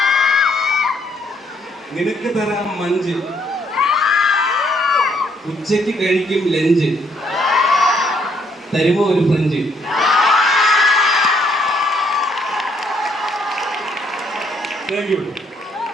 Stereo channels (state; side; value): normal; both; correlation 0.69